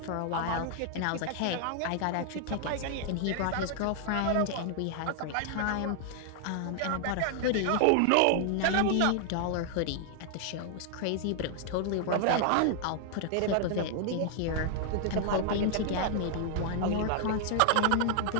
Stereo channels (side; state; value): both; different; correlation 0.00